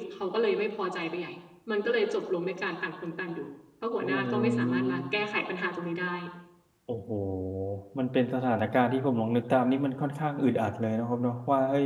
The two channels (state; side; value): identical; both; correlation 1.00